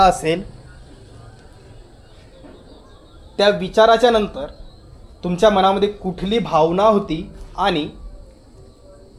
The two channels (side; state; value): both; identical; correlation 1.00